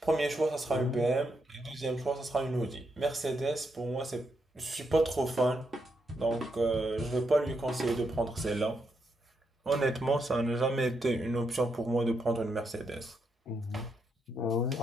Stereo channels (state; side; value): normal; both; correlation 0.81